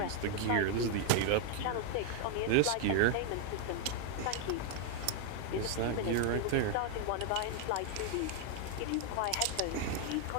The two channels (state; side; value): different; both; correlation 0.00